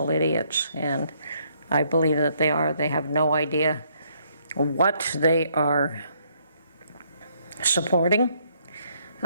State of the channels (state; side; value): inverted; both; correlation -0.70